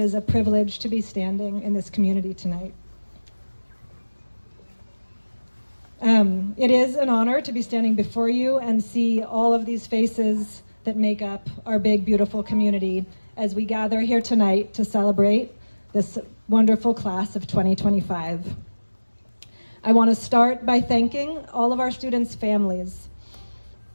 a privilege to be standing in this community tonight. It is an honor to be standing before you and see all of these faces that make up our big, beautiful community as we gather here tonight to celebrate this wonderful class of 2025. I want to start by thanking all of our students' families,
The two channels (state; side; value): inverted; both; correlation -1.00